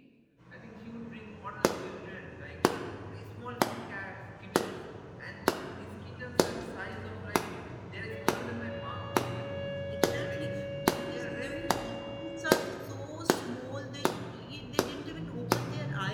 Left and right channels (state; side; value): identical; both; correlation 1.00